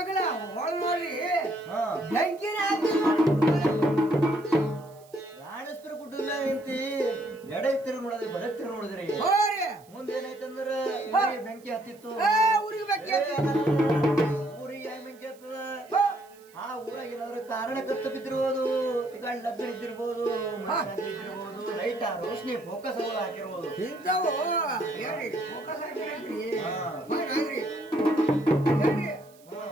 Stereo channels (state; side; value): noise; right; hiss, 27 dB below the sound